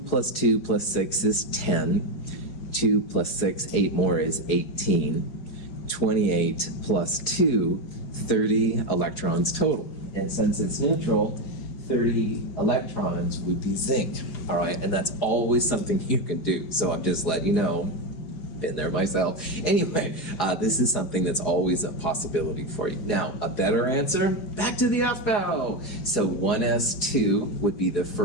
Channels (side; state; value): right; late; 4.8 ms